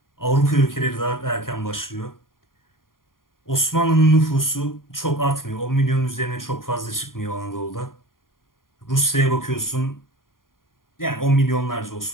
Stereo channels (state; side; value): late; right; 0.91 ms